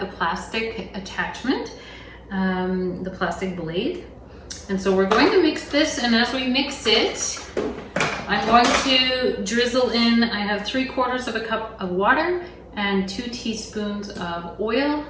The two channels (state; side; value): identical; both; correlation 1.00